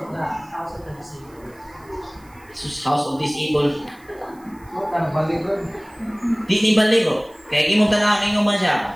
the disabled. House of Disabled. Baligon. Di ni baligo. Kaya imong tanawin man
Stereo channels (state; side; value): noise; right; hiss, 29 dB below the sound